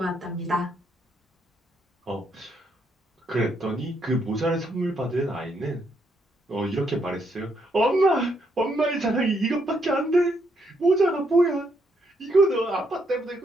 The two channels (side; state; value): both; normal; correlation 0.75